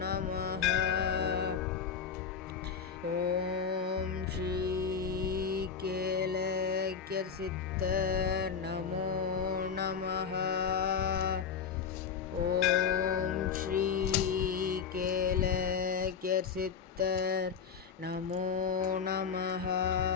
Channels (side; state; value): right; quieter; 6.6 dB